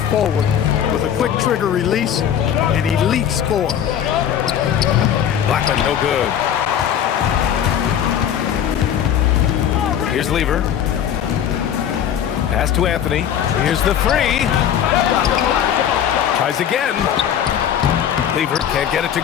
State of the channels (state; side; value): quieter; right; 9.4 dB